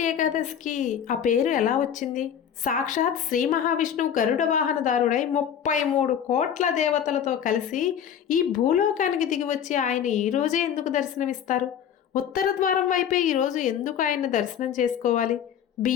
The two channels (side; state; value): right; quieter; 8.8 dB